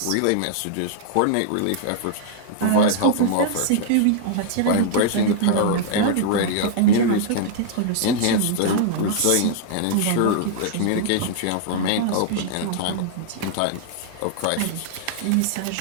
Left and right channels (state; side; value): different; both; correlation -0.01